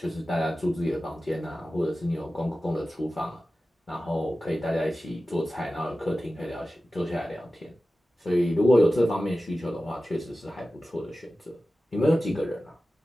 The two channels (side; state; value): both; normal; correlation 0.95